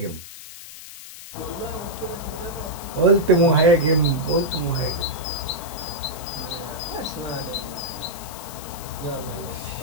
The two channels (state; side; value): noise; left; hiss, 14 dB below the sound